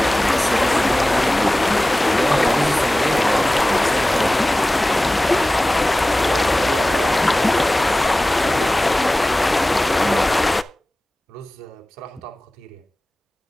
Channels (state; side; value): normal; both; correlation 0.97